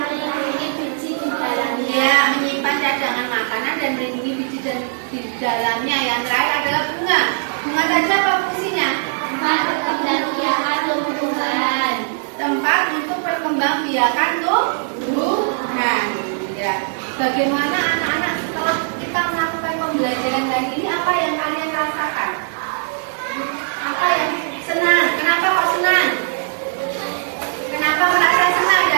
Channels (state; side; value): silent; left; digital silence